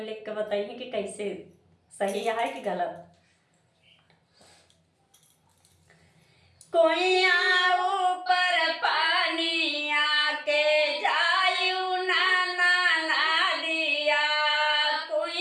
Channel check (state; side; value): identical; both; correlation 1.00